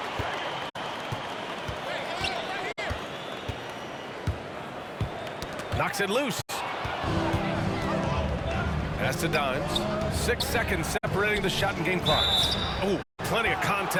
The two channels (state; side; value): identical; both; correlation 1.00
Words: Knocks it loose. Pass to Dimes. 6 seconds separating the shot and game clocks. Oh, plenty of